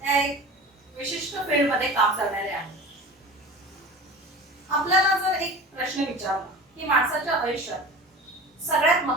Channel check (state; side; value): normal; both; correlation 0.36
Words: त्या एक विशिष्ट फील्डमध्ये काम करणाऱ्या आहेत. आपल्याला जर एक प्रश्न विचारला की माणसाच्या आयुष्यात सगळ्यात